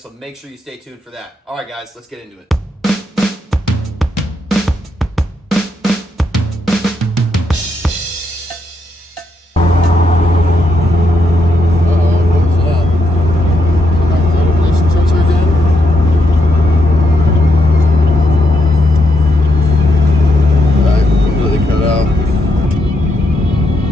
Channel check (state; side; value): normal; both; correlation 0.80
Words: make sure you stay tuned for that. All right guys, let's get into it.